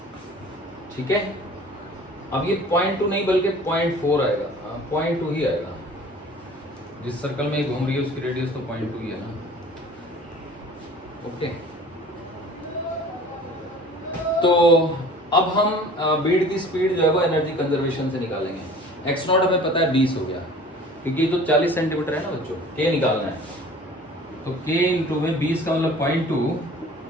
ठीक है। अब ये 0.2 नहीं बल्कि 0.4 आएगा, 0.2 ही आएगा। जिस सर्कल में घूम रही है उसकी रेडियस तो 0.2 ही है ना। ओके, तो अब हम बीड की स्पीड जो है वो एनर्जी कंजर्वेशन से निकालेंगे। x0 हमें पता है 20 हो गया, क्योंकि तो 40 सेंटीमीटर है ना बच्चों। K निकालना है, तो K इंटू में 20 का मतलब 0.2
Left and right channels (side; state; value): both; normal; correlation 0.46